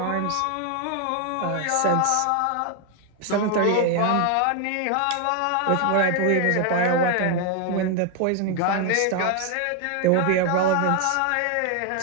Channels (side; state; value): both; different; correlation 0.01